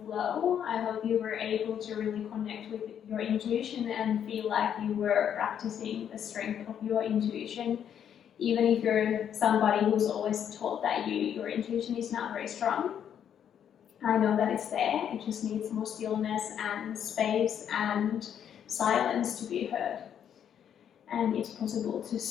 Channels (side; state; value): right; quieter; 9.0 dB